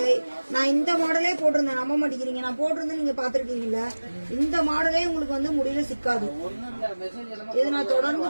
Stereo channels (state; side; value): inverted; both; correlation -1.00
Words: நான் இந்த மாடலே போட்டிருந்தேன். நம்ப மாட்டேங்கிறீங்க, நான் போட்டிருந்தேன், நீங்க பாத்துருக்கீங்கல்ல. இந்த மாடலே உங்களுக்கு வந்து முடியல சிக்காது. இது நான்